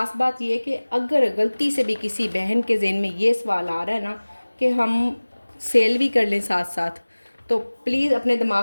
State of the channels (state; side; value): inverted; both; correlation -1.00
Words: बात ये कि अगर गलती से भी किसी बहन के ज़हन में ये सवाल आ रहा है ना कि हम सेल भी कर लें साथ साथ, तो प्लीज़ अपने